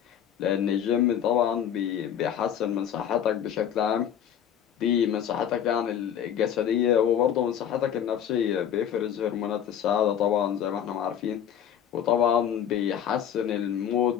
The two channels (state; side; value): quieter; right; 9.3 dB